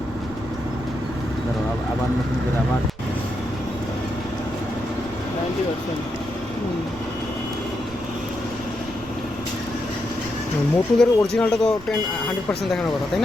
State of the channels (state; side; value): noise; right; rumble, 18 dB below the sound